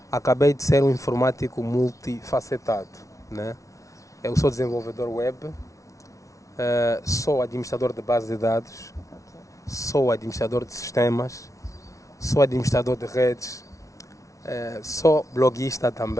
acabei de ser um informático multifacetado, né? Eu sou desenvolvedor web, sou administrador de bases de dados, sou administrador de sistemas, sou administrador de redes, sou bloguista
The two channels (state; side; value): late; right; 0.15 ms